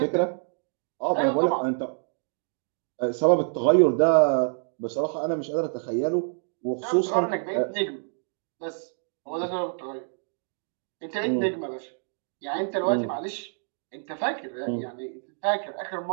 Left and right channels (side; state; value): left; silent; digital silence